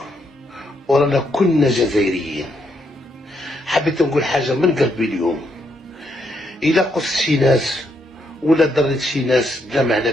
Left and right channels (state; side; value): normal; both; correlation 0.76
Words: ورانا كلنا جزائريين. حبيت نقول حاجة من قلبي اليوم. إذا قصت شي ناس ولا ضريت شي ناس بلا معنى